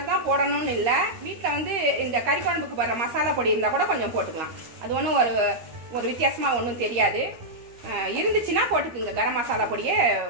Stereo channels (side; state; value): left; late; 13 ms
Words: தான் போடணும்னு இல்லை. வீட்டில் வந்து இந்த கறி குழம்புக்கு போடுற மசாலா பொடி இருந்தால் கூட கொஞ்சம் போட்டுக்கலாம். அது ஒன்றும் ஒரு வித்தியாசமாக ஒன்றும் தெரியாது. இருந்துச்சுன்னா போட்டுக்குங்க. கரம் மசாலா பொடியை